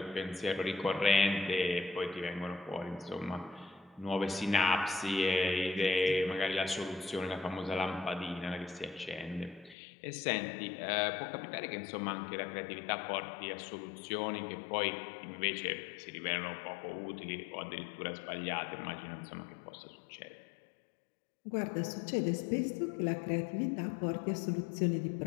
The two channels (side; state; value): right; drops out; at 9.8 s